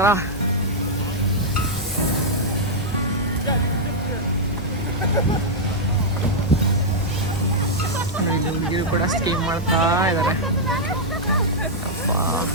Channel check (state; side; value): normal; both; correlation -0.06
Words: ಹುಡುಗಿರು ಕೂಡ ಸ್ಕೀಮ್ ಮಾಡ್ತಾ ಇದ್ದಾರೆ.